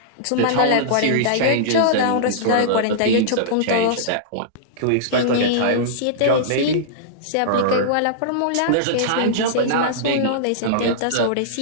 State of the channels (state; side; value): different; both; correlation -0.03